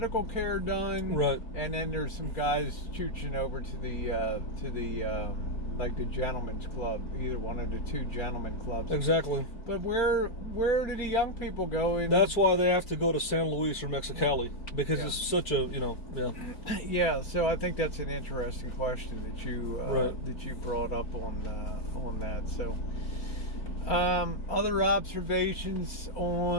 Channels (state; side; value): late; right; 4.6 ms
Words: care done, and then there's some guys chooching over to the like the gentleman's club, either one of the two gentlemen clubs. Exactly. But where do the young people go? That's why they have to go to San Luis or Mexicali, because it's such a, Yeah, so I think that's an interesting question that you brought up on that. So other observations